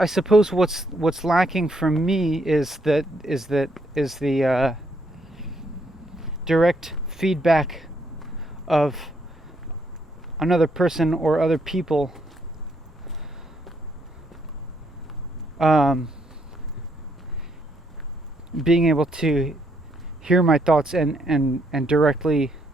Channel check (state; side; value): normal; both; correlation 0.73